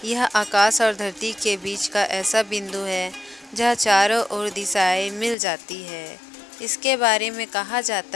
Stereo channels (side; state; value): right; drops out; at 5.4 s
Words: यह आकाश और धरती के बीच का ऐसा बिंदु है जहाँ चारों ओर दिशाएं मिल जाती है। इसके बारे में कहा